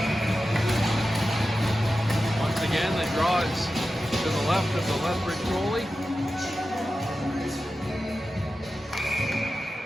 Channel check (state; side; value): normal; both; correlation 0.93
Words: Once again, the draw is to the left of the Lethbridge goalie.